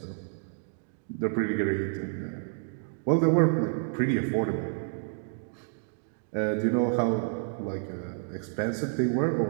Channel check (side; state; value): left; silent; digital silence